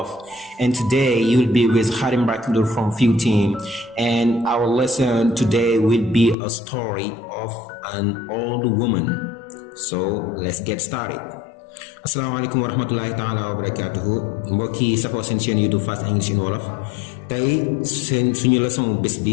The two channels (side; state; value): right; drops out; at 6.4 s